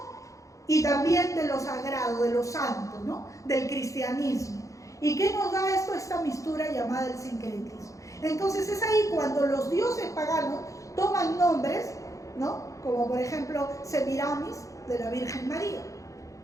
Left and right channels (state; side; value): late; right; 0.16 ms